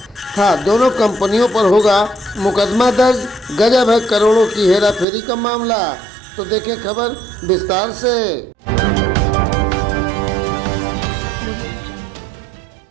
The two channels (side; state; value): left; drops out; at 5.1 s